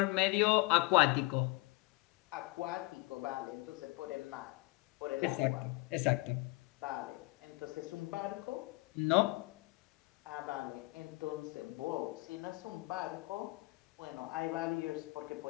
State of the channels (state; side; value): quieter; right; 24.1 dB